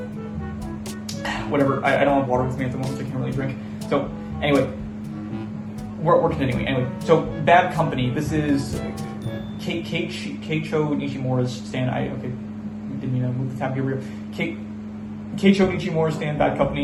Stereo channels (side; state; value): both; identical; correlation 1.00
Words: whatever. I don't have water with me at the moment, so I can't really drink. So anyway, we're continuing. Anyway, so Bad Company. This is Keicho Nishimura's stand. Didn't even move the tab here. Keicho Nishimura's stand. Bad